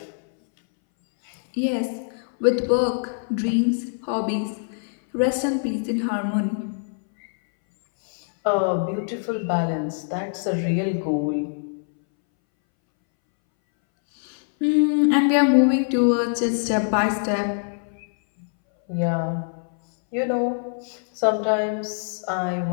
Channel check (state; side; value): silent; right; 62 dB below the other